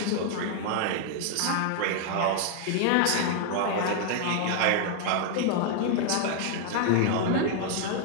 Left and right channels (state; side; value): different; both; correlation 0.00